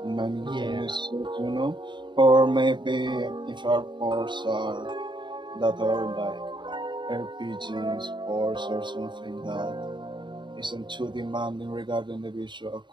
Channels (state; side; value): late; left; 0.23 ms